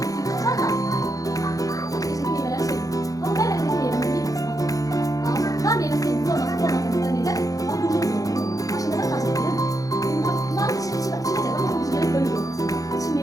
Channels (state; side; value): late; right; 0.17 ms